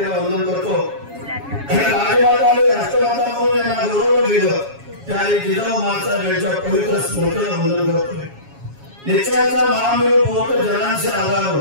वंदन करतो। राजमाता आणि राष्ट्रमाता म्हणून यांना गौरव दिलं त्याने जिजाऊ मासाच्या पवित्र स्मृतीला वंदन करतोय। निश्चयाचा महामेव बहुत जनांचे आधार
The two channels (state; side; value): late; left; 7.2 ms